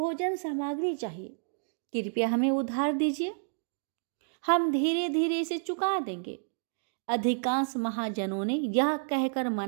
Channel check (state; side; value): silent; left; digital silence